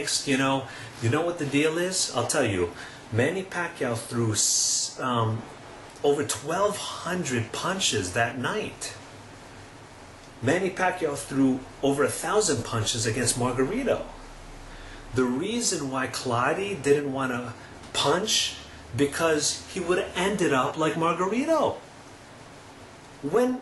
You know what the deal is? I'll tell you. Manny Pacquiao threw over 1,200 punches that night. Manny Pacquiao threw over 1,000 punches against Margarito. The reason why Claudio didn't want to punch, because he would have ended up like Margarito.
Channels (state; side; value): identical; both; correlation 1.00